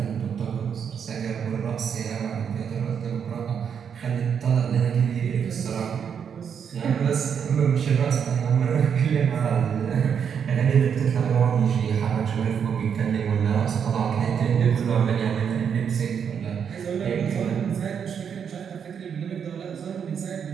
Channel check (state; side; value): quieter; left; 7.4 dB